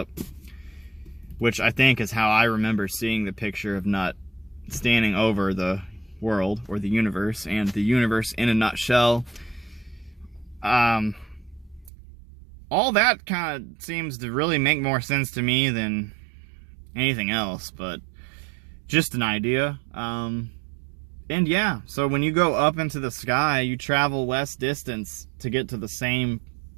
which I think is how I remember seeing the picture of Nut standing over the world or the universe, and the universe in a nutshell. All that kind of seems to really make more sense to me than anything else, but just an idea. And yeah, so when you go up into the sky, you travel less distance to get to the same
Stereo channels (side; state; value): left; drops out; at 11.9 s